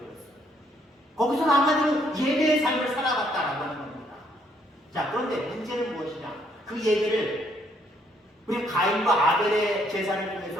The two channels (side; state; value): both; normal; correlation 0.70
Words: 거기서는 한마디로 예배의 삶을 살아갔다라고 하는 겁니다. 자, 그런데 문제는 무엇이냐? 그 예배를 우리 가인과 아벨의 제사를